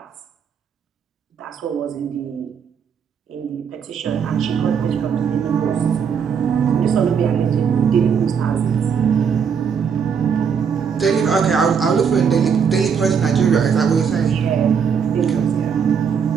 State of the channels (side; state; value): left; quieter; 6.9 dB